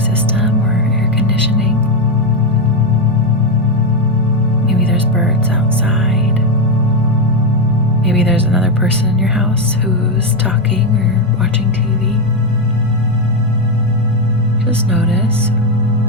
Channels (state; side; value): normal; both; correlation 0.06